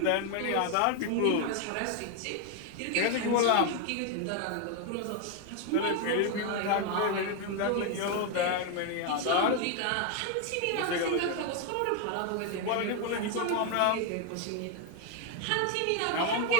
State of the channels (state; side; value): different; both; correlation 0.01